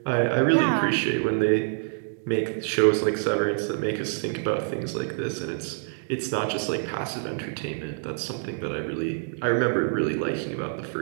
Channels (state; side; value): silent; left; digital silence